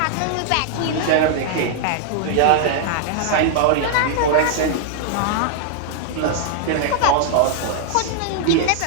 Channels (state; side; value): different; both; correlation -0.01